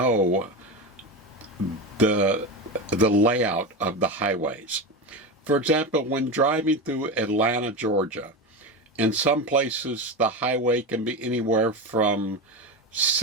the layout of the highways. For example, when driving through Atlanta, Georgia, in some places the highway can be anywhere from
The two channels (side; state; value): both; normal; correlation 0.20